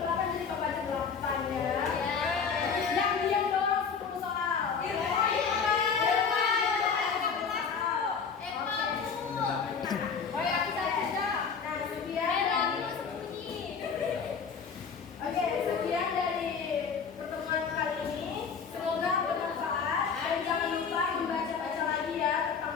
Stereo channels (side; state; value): right; quieter; 6.0 dB